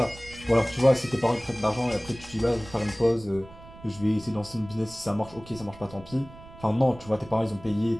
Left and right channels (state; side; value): noise; right; rumble, 19 dB below the sound